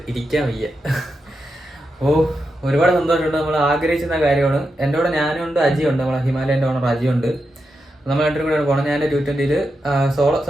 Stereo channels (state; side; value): normal; both; correlation 0.87